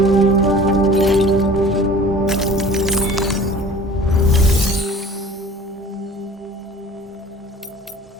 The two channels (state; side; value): normal; both; correlation 0.45